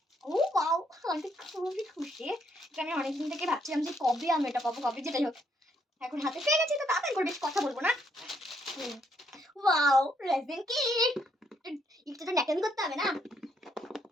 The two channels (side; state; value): both; normal; correlation 0.72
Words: ও ওয়াও, আমি তো খুবই খুশি। আমি অনেকদিন থেকে ভাবছিলাম যে কবে আমি এটা পাবো, কবে যেটাই হোক এখন হাতে পেয়ে গেছি। তো তাড়াতাড়ি করে বেশি কথা বলবো না। Wow, resin kit. একটু তো ন্যাকেমি করতে হবে না।